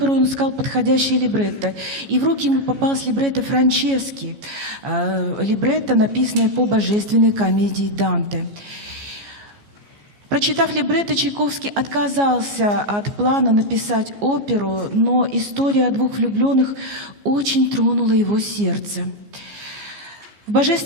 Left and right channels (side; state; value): left; late; 14 ms